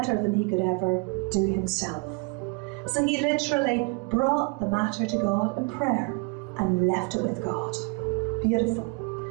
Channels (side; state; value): left; quieter; 30.7 dB